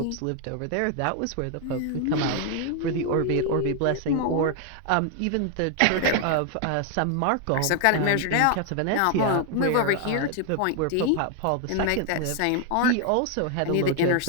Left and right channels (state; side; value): different; both; correlation 0.00